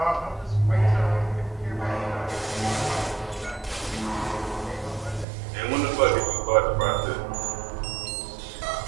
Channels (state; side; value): drops out; left; at 5.2 s